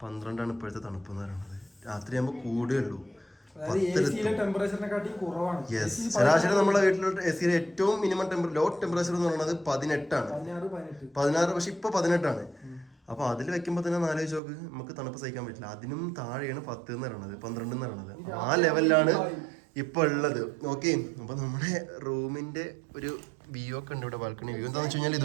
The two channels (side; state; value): left; drops out; at 14.4 s